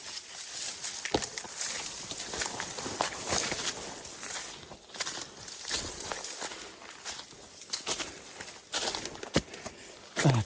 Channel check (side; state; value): both; identical; correlation 1.00